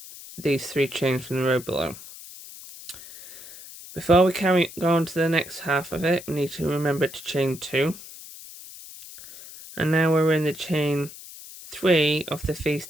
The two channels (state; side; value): noise; left; hiss, 16 dB below the sound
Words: these 3 chains from the row below. Before we go on to the next half of it, we need to remember to chain 2. And now we're in the chain 3 of the